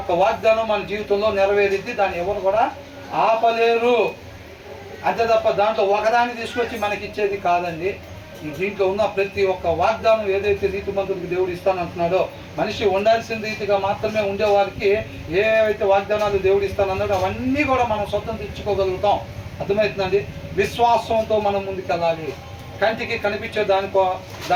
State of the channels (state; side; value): identical; both; correlation 1.00